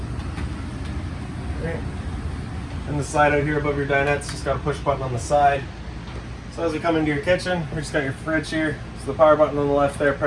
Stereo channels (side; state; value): both; identical; correlation 1.00